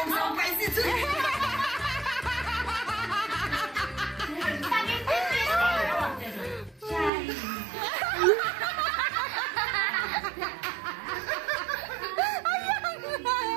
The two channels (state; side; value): drops out; left; at 7.1 s